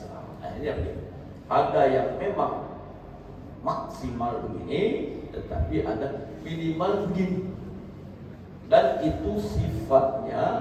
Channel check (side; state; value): both; identical; correlation 1.00